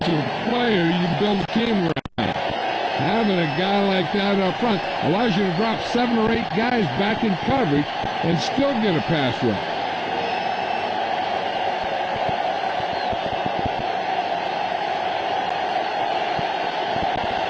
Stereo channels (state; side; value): identical; both; correlation 1.00